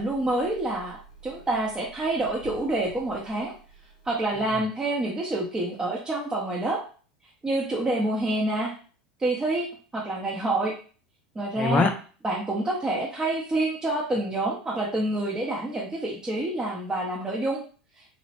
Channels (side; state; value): both; normal; correlation 0.58